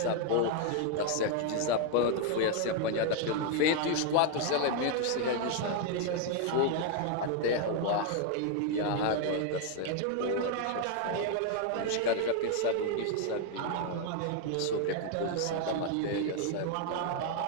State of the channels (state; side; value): different; both; correlation 0.00